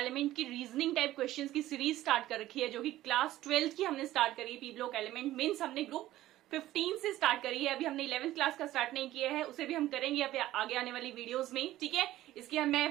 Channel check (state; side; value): quieter; left; 14.9 dB